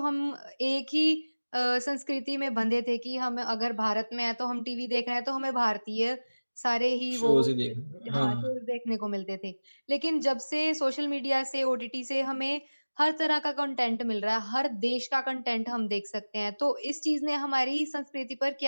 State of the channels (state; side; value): inverted; both; correlation -1.00